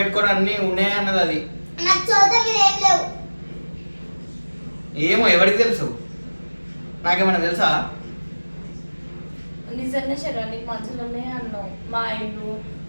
అన్ని ఉన్నాయి అన్నది అది. నాకు చోట మీద ఏం లేవు. ఏమో ఎవరికి తెలుసు? నాకేమన్నా తెలుసా? నిజంగా శరీరానికి మంచులు ఉన్నాయి అన్నావు. మా ఇల్లు,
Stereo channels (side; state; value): both; inverted; correlation -1.00